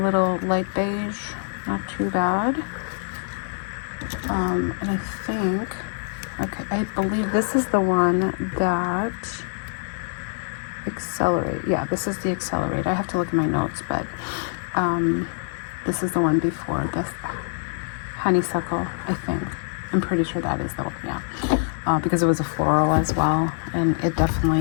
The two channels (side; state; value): right; silent; 59 dB below the other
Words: light beige, not too bad. And I think, okay, I believe this is the one that Accelerate. Yeah, this is the Accelerate. I have to look at my notes, but this is the one before this Honeysuckle, I think. I'm pretty sure that is the one, yeah. Because it was a floral as well, and it